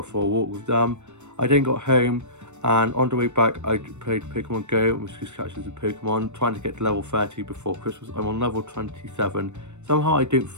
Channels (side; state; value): left; late; 0.83 ms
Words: for a walk with them. I then got home, and on the way back I played Pokemon Go and was just catching some Pokemon, trying to get to level 30 before Christmas. I'm on level 27. Somehow I don't